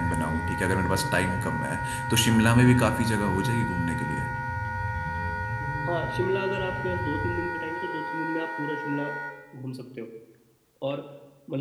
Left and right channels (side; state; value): both; identical; correlation 1.00